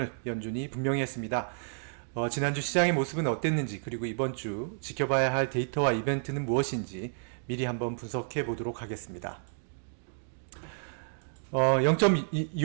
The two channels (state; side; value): silent; left; digital silence